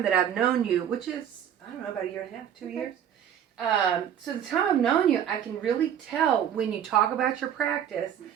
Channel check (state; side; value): quieter; left; 9.5 dB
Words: that I've known you, which is, about a year and a half, 2 years. So the time I've known you, I can really tell when you talk about your practice